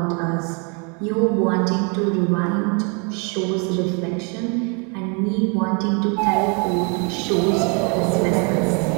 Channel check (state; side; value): quieter; left; 35.2 dB